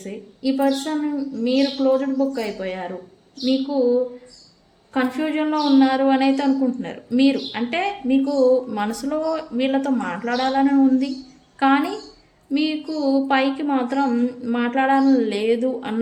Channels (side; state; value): both; identical; correlation 1.00